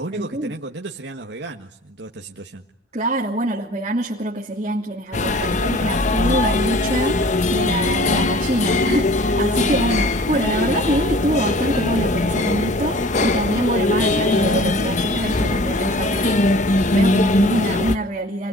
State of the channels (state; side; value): normal; both; correlation 0.48